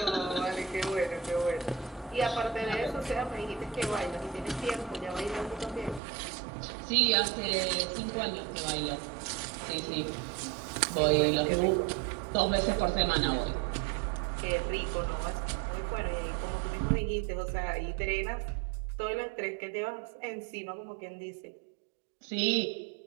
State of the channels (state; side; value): drops out; left; at 6.0 s